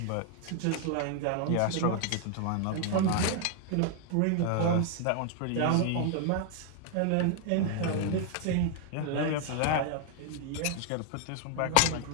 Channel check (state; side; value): different; both; correlation 0.00